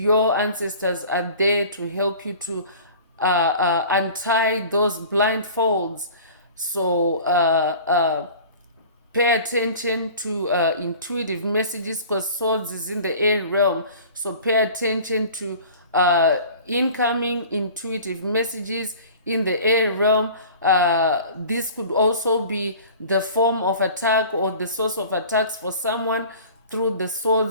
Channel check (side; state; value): both; inverted; correlation -0.43